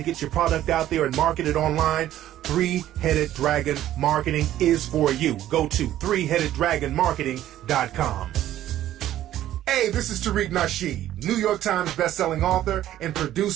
get your product out there and market it online, Three-Headed Dragon Marketing is for you. Go to ThreeHeadedDragonMarketing.com. Hey, this is Tariq Nasheed, New York Times bestselling author and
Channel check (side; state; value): left; quieter; 12.8 dB